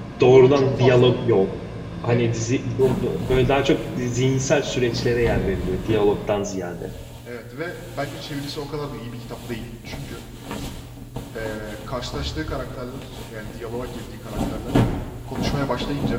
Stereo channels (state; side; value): identical; both; correlation 1.00